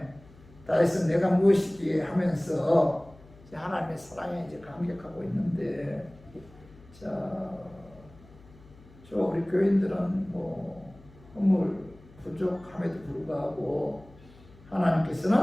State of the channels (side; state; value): left; noise; hum, 24 dB below the sound